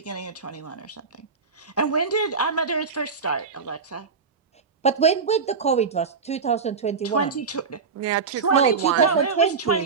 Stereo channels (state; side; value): quieter; left; 5.3 dB